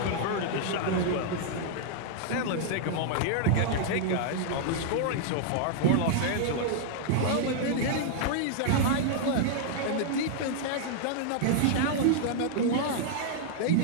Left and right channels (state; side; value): different; both; correlation -0.01